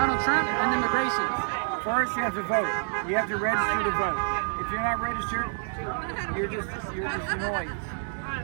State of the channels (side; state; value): left; silent; digital silence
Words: Trump and immigration? First, you have to vote. You have to register to vote. If you're not registered, you're just noise.